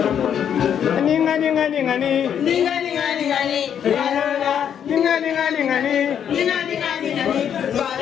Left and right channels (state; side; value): quieter; right; 8.7 dB